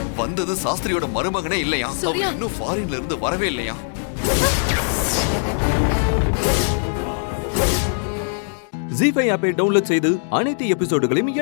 வந்தது சாஸ்திரியோட மருமகனே இல்லையா? அவர் இன்னும் ஃபாரின்ல இருந்து வரவே இல்லையா? ZEE5 ஆப்பை டவுன்லோட் செய்து அனைத்து எபிசோடுகளையும்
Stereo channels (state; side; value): silent; right; digital silence